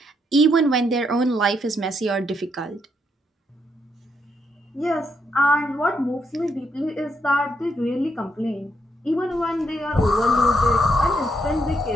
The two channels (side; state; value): both; normal; correlation 0.77